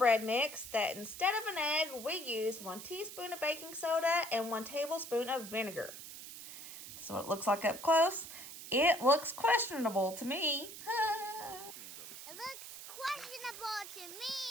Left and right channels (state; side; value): noise; right; hiss, 12 dB below the sound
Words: mix that instead of an egg, we use 1 teaspoon of baking soda and 1 tablespoon of vinegar. This is what it looks like up close. It looks questionable to me. It looks questionable